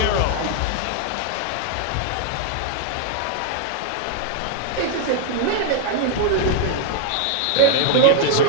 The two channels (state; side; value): different; both; correlation 0.00